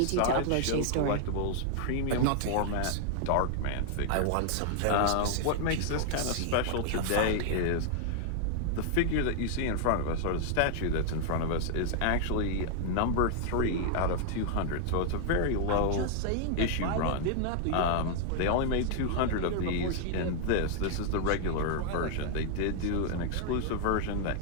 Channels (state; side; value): different; both; correlation 0.00